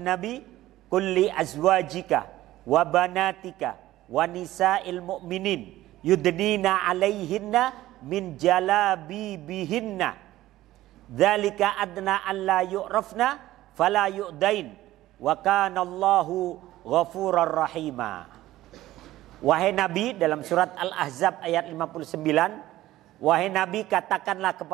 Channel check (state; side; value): quieter; left; 15.5 dB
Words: nabi, kulli azwajika wa banatika wa nisa'il mu'minin yudnina alaihinna min jalabibihinna dzalika adna alla yu'rafna fala yu'dain wa kana Allahu ghafurar rahima. Wahai Nabi, dalam surat Al-Ahzab ayat 59, wahai Nabi, katakanlah